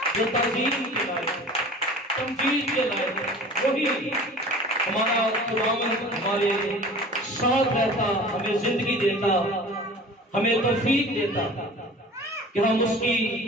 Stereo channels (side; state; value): both; normal; correlation 0.42